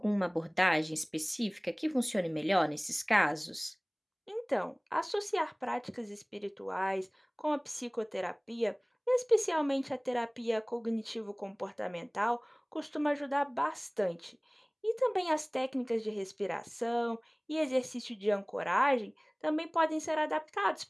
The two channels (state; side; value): identical; both; correlation 1.00